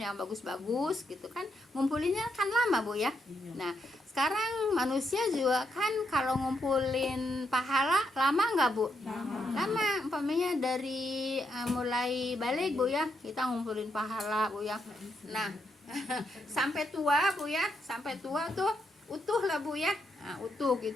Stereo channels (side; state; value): both; normal; correlation 0.79